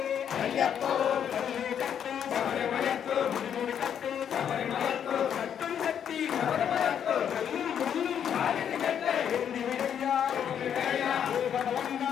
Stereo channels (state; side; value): quieter; right; 8.7 dB